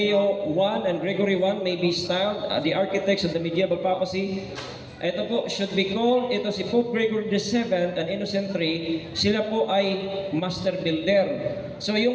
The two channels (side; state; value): both; identical; correlation 1.00